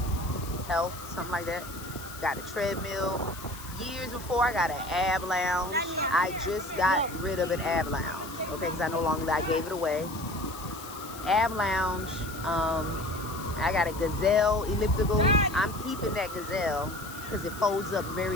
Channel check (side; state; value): left; noise; hiss, 15 dB below the sound